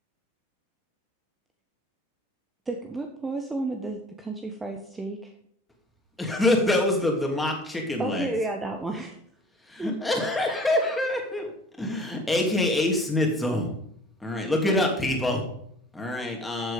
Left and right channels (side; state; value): both; normal; correlation 0.48